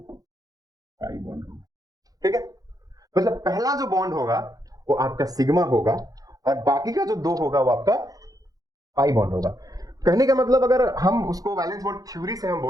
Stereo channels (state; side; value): late; left; 0.18 ms